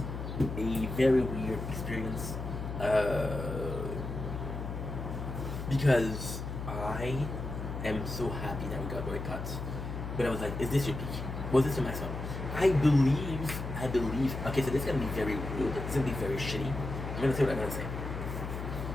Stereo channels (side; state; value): left; noise; hum, 6 dB below the sound